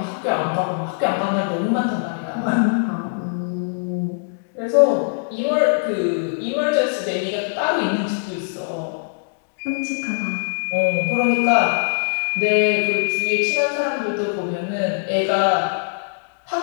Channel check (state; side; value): silent; right; digital silence